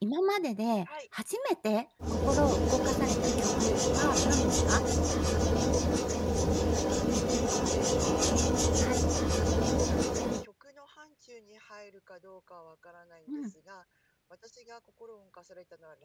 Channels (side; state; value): both; identical; correlation 1.00